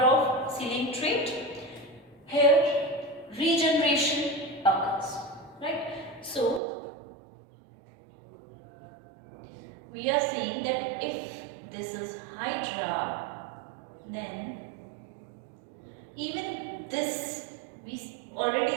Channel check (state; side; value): drops out; left; at 6.6 s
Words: of ceiling trait. Here regeneration occurs, right? So we are saying that if this is Hydra, then even this we